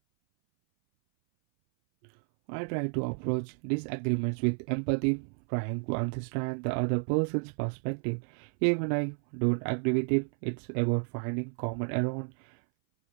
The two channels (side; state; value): left; silent; 57 dB below the other